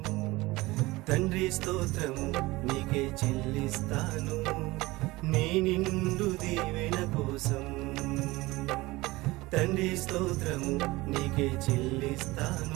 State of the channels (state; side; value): quieter; left; 20.7 dB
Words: తండ్రి స్తోత్రము నీకే చెల్లిస్తాను, నీ నిండు దీవెన కోసం. తండ్రి స్తోత్రము నీకే